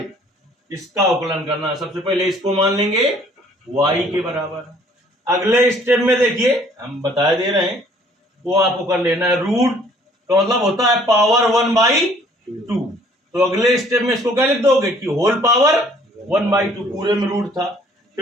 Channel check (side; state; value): both; normal; correlation 0.58